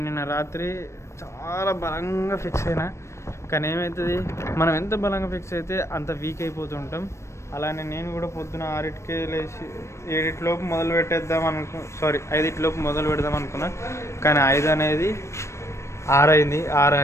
నిన్న రాత్రి చాలా బలంగా ఫిక్స్ అయినా. కానీ ఏమవుతుంది, మనం ఎంత బలంగా ఫిక్స్ అయితే అంత వీక్ అయిపోతుంటాం. అలానే నేను కూడా పొద్దున 6కి లేచి 7లోపు మొదలు పెట్టేద్దాం 5లోపు మొదలు పెడదాం అనుకున్నా. కానీ 5 అనేది 6 అయింది, 6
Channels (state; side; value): late; right; 0.13 ms